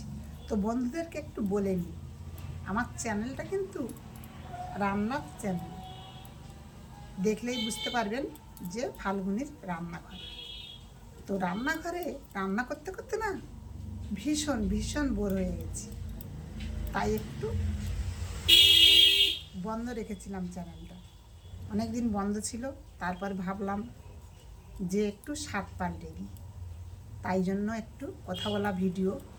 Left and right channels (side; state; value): both; identical; correlation 1.00